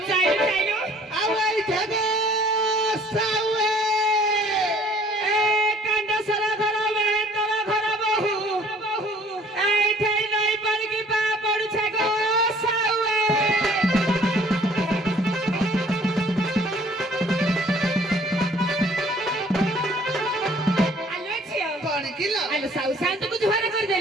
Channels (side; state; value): both; normal; correlation 0.55